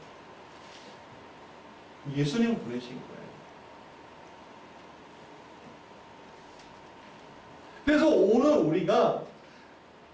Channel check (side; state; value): both; identical; correlation 1.00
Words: 예수님을 보내신 거예요. 그래서 오늘 우리가